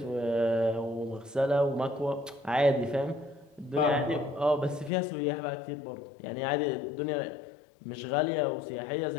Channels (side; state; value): right; drops out; at 4.9 s